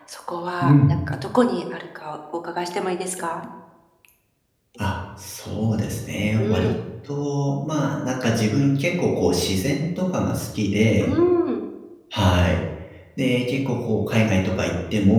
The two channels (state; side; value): identical; both; correlation 1.00